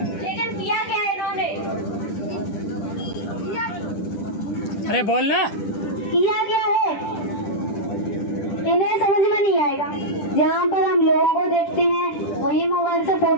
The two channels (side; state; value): right; late; 10 ms